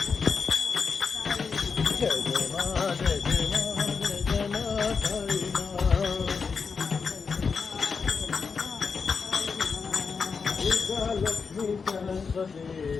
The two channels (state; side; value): quieter; right; 5.4 dB